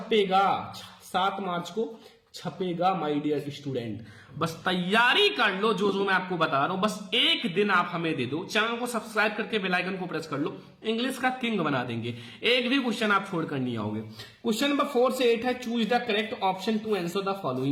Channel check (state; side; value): identical; both; correlation 1.00